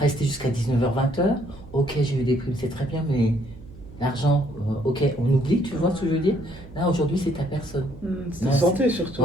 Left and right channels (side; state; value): right; noise; hum, 18 dB below the sound